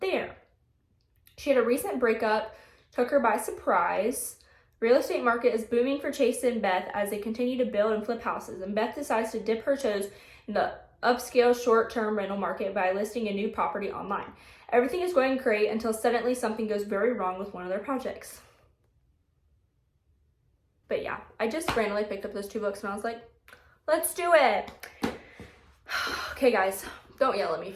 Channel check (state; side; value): identical; both; correlation 1.00